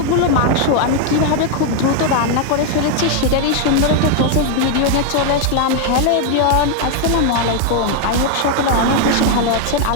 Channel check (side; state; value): both; different; correlation 0.00